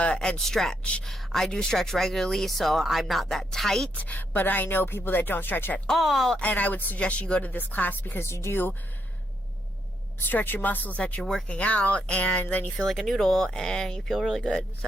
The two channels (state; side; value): normal; both; correlation 0.78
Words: and stretch. I do stretch regularly, so I'm not that tight, but I know people that don't stretch at all, and I would suggest you go to this class because you do stretch your muscles that you're working out, and then you feel like a noodle and you feel really good.